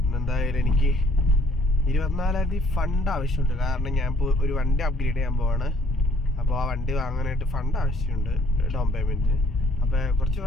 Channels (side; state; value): both; normal; correlation 0.62